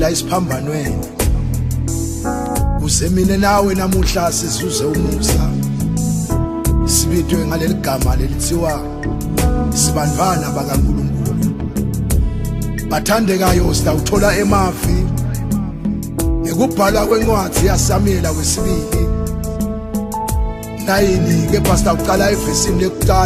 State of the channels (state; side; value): identical; both; correlation 1.00